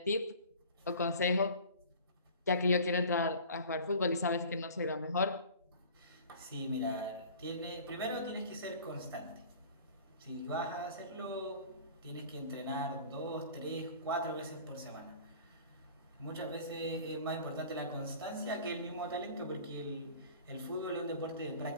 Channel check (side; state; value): both; inverted; correlation -0.44